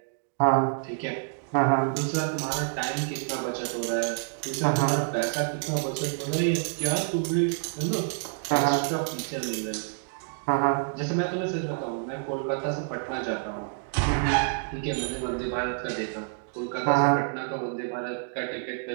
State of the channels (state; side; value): silent; left; 59 dB below the other